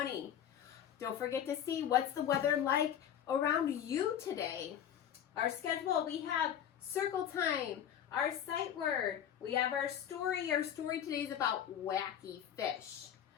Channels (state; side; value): quieter; right; 9.7 dB